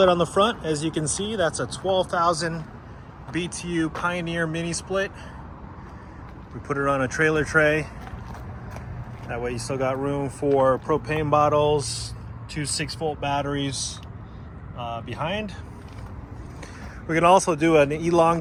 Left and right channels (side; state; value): both; identical; correlation 1.00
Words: on the front. As you can see, that's a 12,000 BTU Pioneer mini split. We put it on a trailer tray. That way you still got room for propane bottles, two 6-volt batteries behind. We can also do an